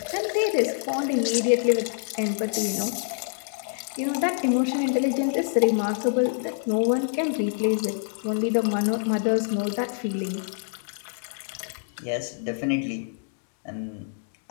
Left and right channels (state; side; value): silent; right; digital silence